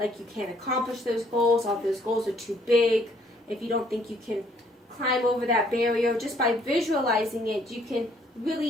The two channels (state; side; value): normal; both; correlation 0.64